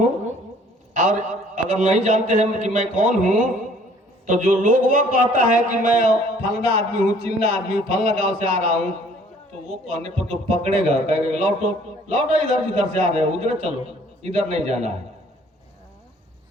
और अगर नहीं जानते हैं कि मैं कौन हूं, तो जो लोग वो कहता है कि मैं फलना आदमी हूं, चिल्ला आदमी हूं, फलना गांव से आ रहा हूं, तो वो कहने पर तो पकड़ेगा, कहेगा लौटो लौटो, इधर जिधर से आ रहे हो उधर चलो, इधर नहीं जाना है।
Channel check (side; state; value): both; normal; correlation 0.57